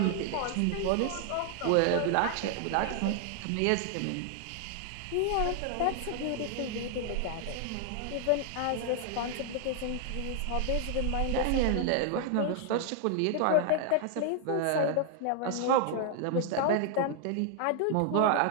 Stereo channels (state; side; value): different; both; correlation 0.00